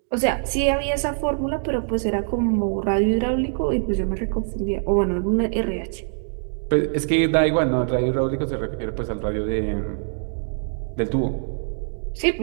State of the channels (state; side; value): silent; left; digital silence